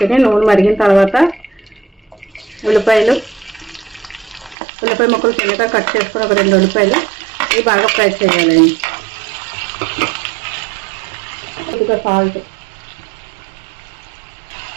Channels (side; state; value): left; drops out; at 4.5 s